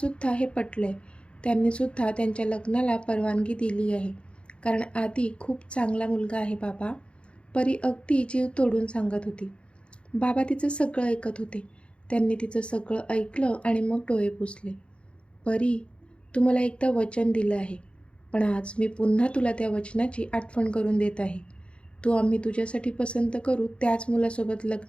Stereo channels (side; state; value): right; late; 0.058 ms